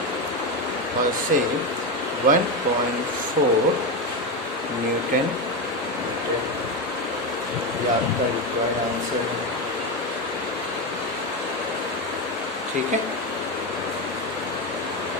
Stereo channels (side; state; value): both; normal; correlation 0.13